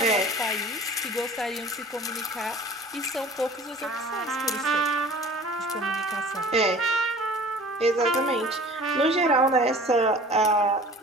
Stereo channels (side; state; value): both; normal; correlation 0.45